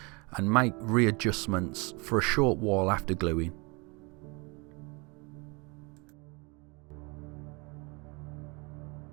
and make readjustments for a short while after gluing.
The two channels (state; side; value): quieter; left; 29.2 dB